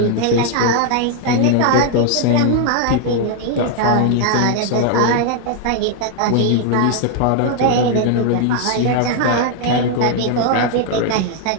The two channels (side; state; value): both; different; correlation 0.00